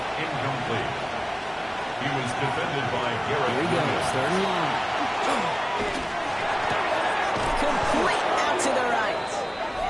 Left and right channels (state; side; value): identical; both; correlation 1.00